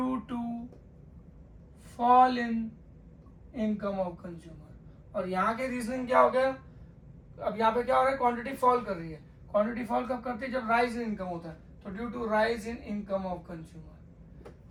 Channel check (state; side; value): identical; both; correlation 1.00